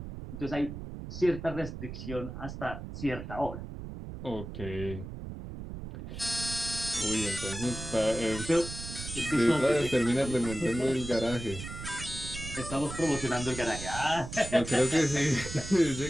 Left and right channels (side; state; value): right; noise; rumble, 9 dB below the sound